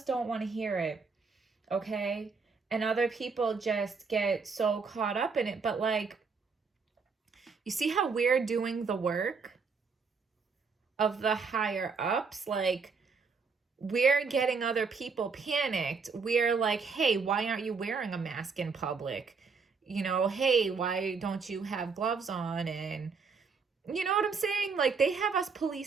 don't want to hear it. Okay? And other people just get so caught up in it. But like, you see how we're doing the work of the higher ups? Like, we're getting other people panicked. We're like, hey, why aren't you wearing a mask in public? Hey, why don't you have gloves on? And you know what I'm saying? Like, they have us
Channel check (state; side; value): quieter; left; 5.0 dB